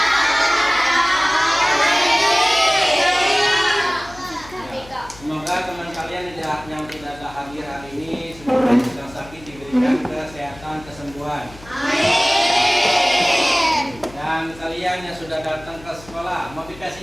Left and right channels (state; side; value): noise; left; hum, 20 dB below the sound